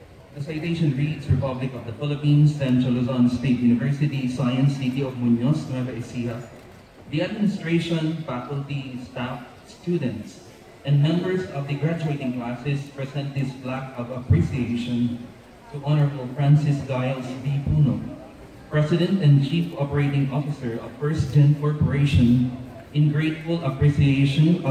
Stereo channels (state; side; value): identical; both; correlation 1.00